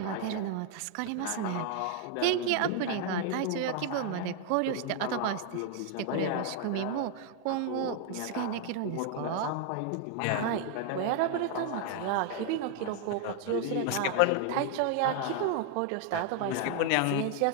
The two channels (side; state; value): both; different; correlation 0.00